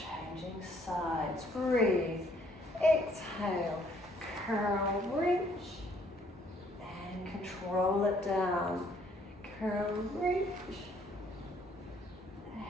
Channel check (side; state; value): both; normal; correlation 0.64